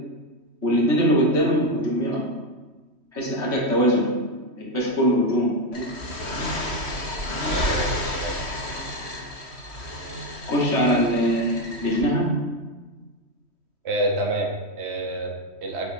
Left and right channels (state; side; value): late; left; 3.1 ms